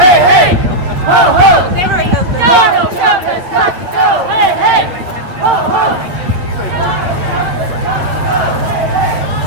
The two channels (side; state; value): left; late; 8.8 ms